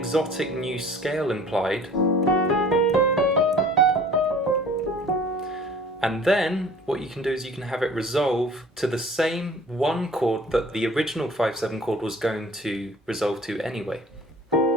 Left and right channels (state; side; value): normal; both; correlation 0.48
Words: new scale implied. And then what you can do is you can have it resolve to the same one chord that the original 5/7 chord was going to resolve to anyway.